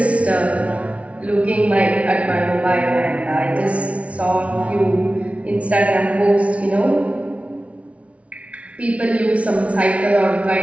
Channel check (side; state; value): left; late; 0.064 ms